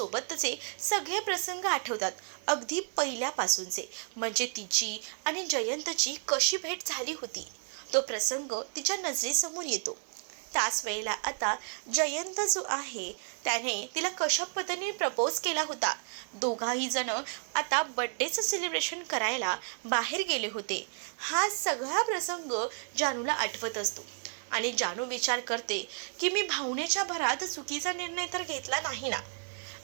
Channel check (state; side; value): silent; left; 57 dB below the other